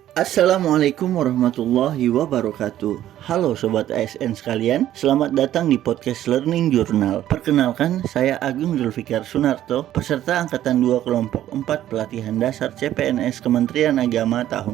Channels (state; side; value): quieter; left; 12.5 dB